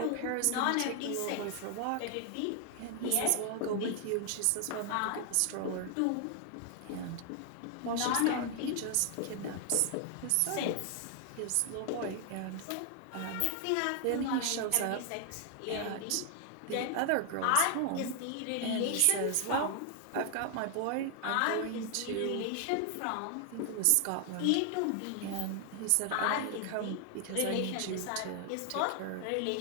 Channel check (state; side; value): different; both; correlation 0.00